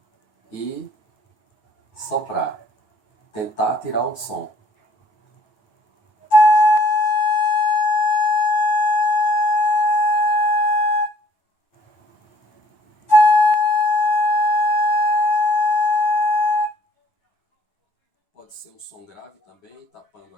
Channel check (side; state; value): right; late; 9.3 ms